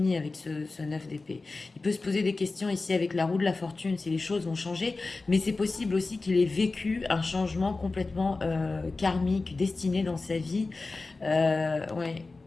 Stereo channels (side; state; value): right; quieter; 3.6 dB